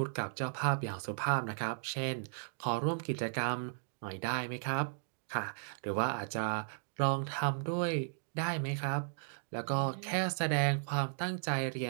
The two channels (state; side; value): silent; left; digital silence